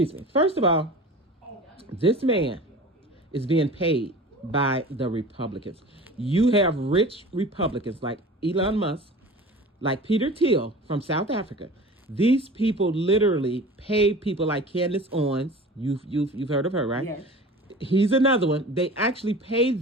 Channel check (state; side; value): normal; both; correlation 0.39